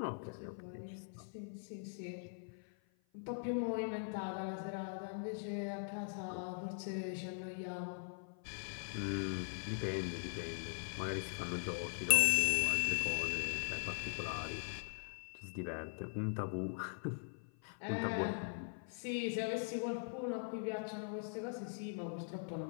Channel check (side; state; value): right; silent; 50 dB below the other